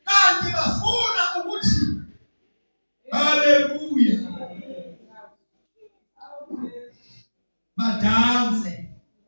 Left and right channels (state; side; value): inverted; both; correlation -1.00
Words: kanti bafuna ukuthi haleluya badanse,